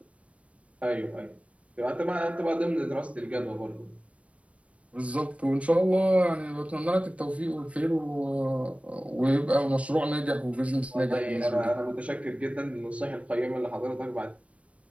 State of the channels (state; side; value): late; left; 0.064 ms